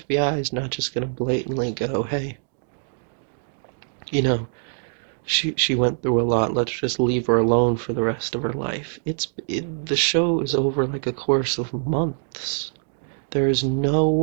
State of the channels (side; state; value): left; silent; digital silence